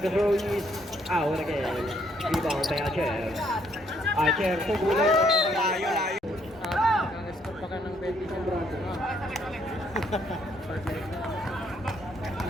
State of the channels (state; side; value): normal; both; correlation 0.70